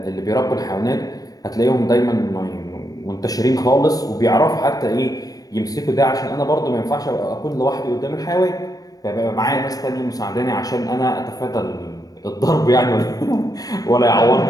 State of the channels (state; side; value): late; right; 0.18 ms